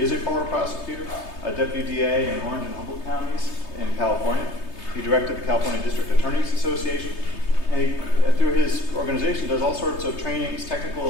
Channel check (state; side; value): late; right; 3.3 ms